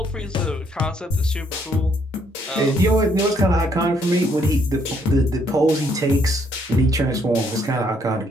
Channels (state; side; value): normal; both; correlation 0.69